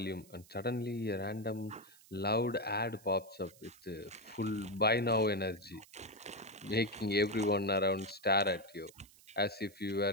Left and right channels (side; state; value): right; noise; hiss, 24 dB below the sound